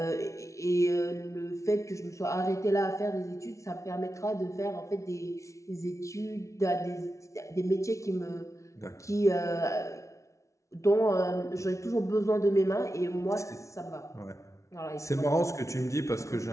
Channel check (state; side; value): late; right; 0.14 ms